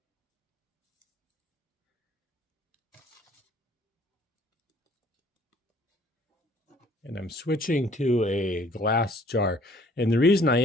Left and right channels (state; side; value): normal; both; correlation 0.58